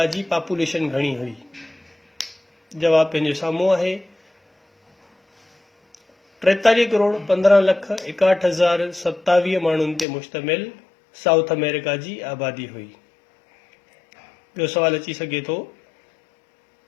जी पॉपुलेशन घणी हुई? जवाब पंहिंजे साम्हूं आहे। 43 करोड़ 15 लख 61,027 माण्हुनि ते मुश्तमिल साउथ अमेरिका जी आबादी हुई। ॿियो सवाल अची सघे थो,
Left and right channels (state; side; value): drops out; right; at 10.1 s